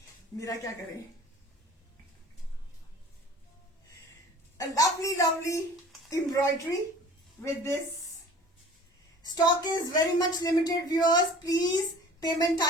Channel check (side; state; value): both; normal; correlation 0.46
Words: मेरा क्या करें। A lovely lovely embroidery with this. Stock is very much limited viewers, please payment